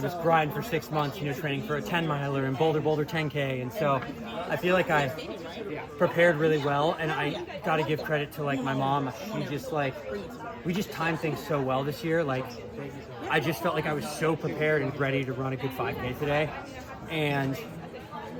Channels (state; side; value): identical; both; correlation 1.00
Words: was grind for 6 months, training for a 10 miler and Boulder 10K. And so I feel like I prepared really well, and I got to give credit to like my mom. She just like, we just timed things so well this year. Like I just felt like I was so prepared and ready to run a good 5K today. And